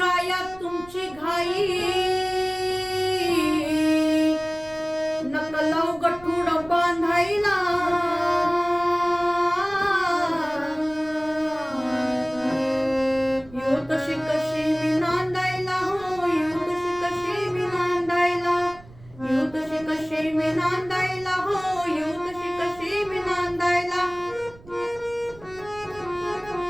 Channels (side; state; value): right; noise; rumble, 22 dB below the sound